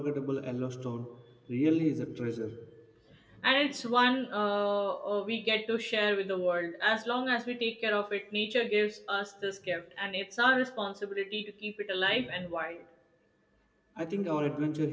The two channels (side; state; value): both; identical; correlation 1.00